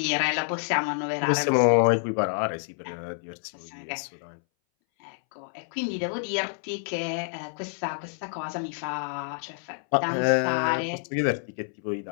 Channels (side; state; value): right; silent; 60 dB below the other